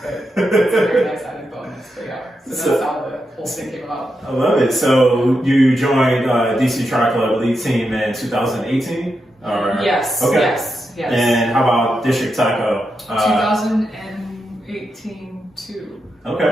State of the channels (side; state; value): both; normal; correlation 0.86